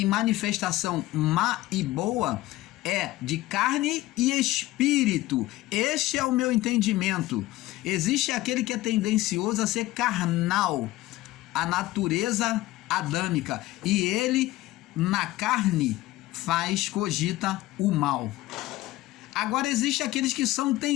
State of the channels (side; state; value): right; quieter; 17.3 dB